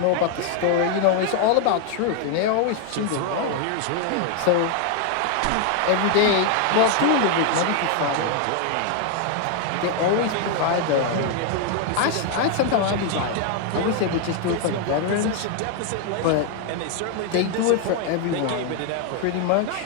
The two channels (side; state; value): both; different; correlation 0.01